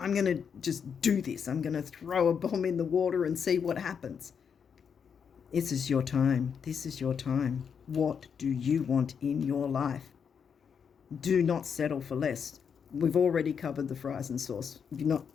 going to just do this. I'm going to throw a bomb in the water and see what happens. This is your time. This is your time. What do you want in your life? Do not settle for less. We've already covered the fries and sauce. You're not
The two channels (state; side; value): quieter; right; 6.9 dB